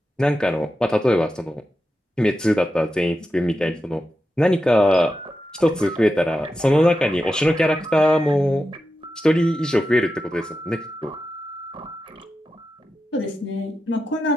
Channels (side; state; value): both; normal; correlation 0.90